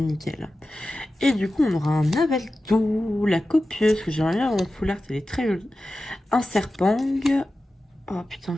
Et du coup, on aura un Avalto, la copieuse, que j'aimerais bien avoir en full art, elle est très jolie. Un Serpang. Oh putain,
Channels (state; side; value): normal; both; correlation 0.94